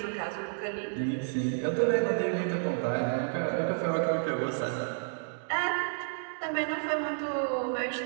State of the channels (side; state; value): left; silent; digital silence